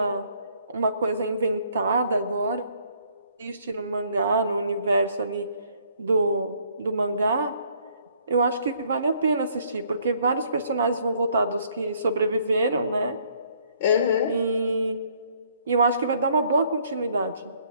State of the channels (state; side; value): inverted; both; correlation -0.64